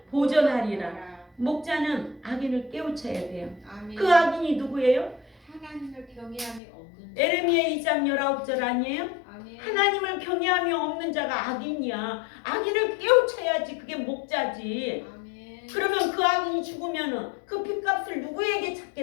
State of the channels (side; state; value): right; drops out; at 6.6 s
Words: 보존하리라. 목자는 악인을 깨우쳐야 돼요. 아멘. 그 악인이 누구예요? 하나님을 경외함이 없는 자. 에레미야 2장 19절 아니에요? 아멘. 하나님을 경외함이 없는 자가 악인이야. 악인을 깨우쳐야지. 그게 목자지. 아멘. 그러면 그 악인이 죽으면은 그 핏값을 누구에게